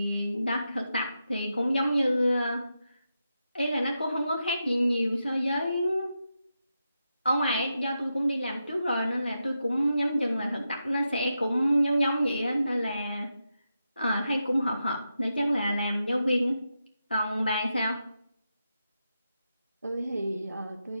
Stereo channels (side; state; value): both; inverted; correlation -0.87